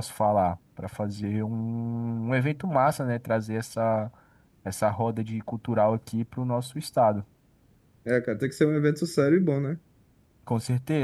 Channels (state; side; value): identical; both; correlation 1.00